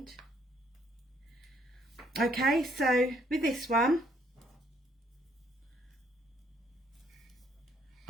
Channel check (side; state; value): both; normal; correlation 0.67